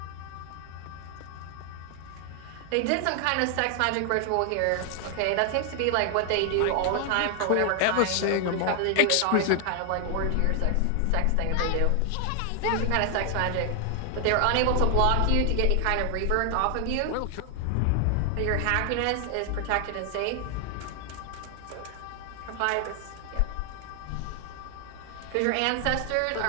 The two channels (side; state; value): both; different; correlation 0.00